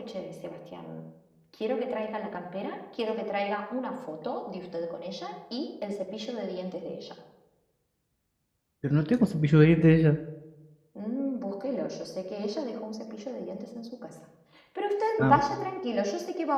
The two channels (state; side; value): identical; both; correlation 1.00